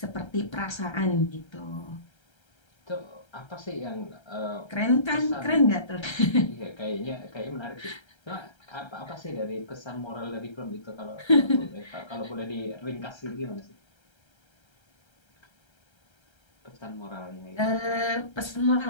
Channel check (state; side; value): late; right; 1.3 ms